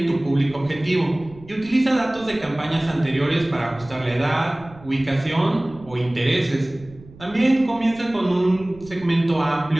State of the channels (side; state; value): right; noise; rumble, 21 dB below the sound